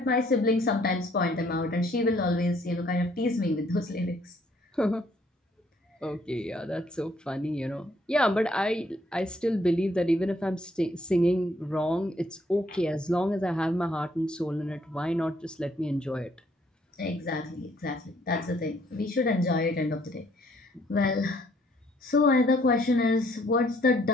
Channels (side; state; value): both; normal; correlation 0.66